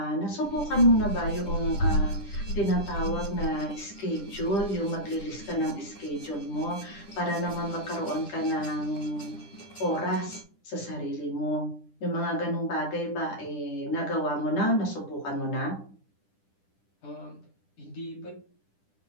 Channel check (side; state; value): right; late; 10 ms